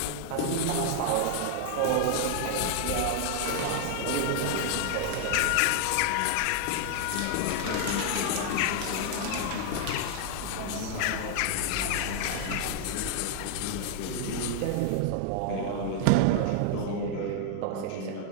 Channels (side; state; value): both; different; correlation 0.00